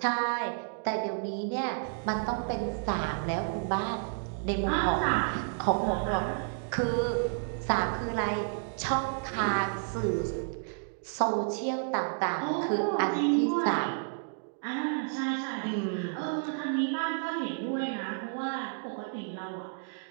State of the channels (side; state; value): left; silent; digital silence